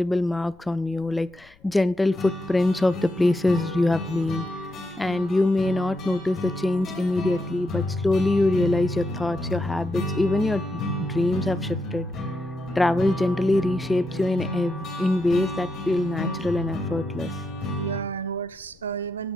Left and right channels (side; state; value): left; noise; rumble, 30 dB below the sound